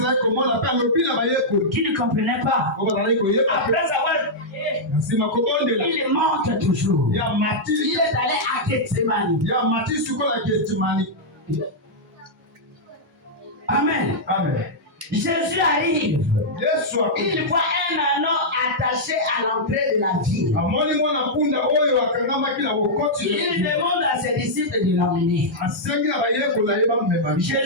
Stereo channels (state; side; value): normal; both; correlation -0.08